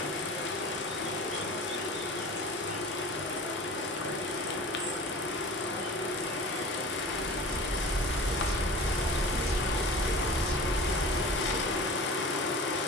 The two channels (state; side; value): normal; both; correlation 0.37